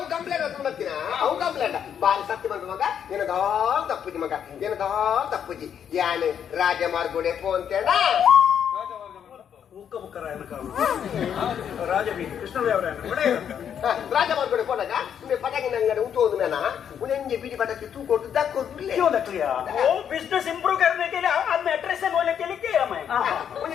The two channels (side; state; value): right; quieter; 8.6 dB